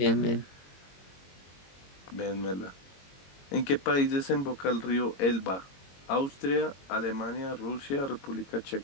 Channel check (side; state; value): right; late; 22 ms